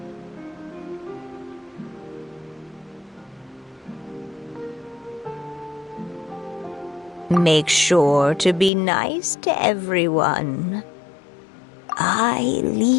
Make sure to be nice to everyone. I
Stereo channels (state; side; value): drops out; right; at 8.7 s